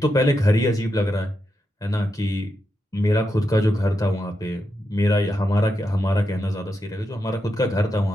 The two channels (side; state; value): both; normal; correlation 0.85